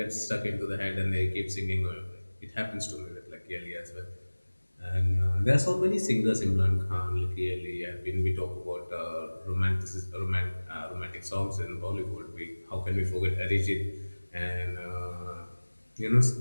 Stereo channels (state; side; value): inverted; both; correlation -1.00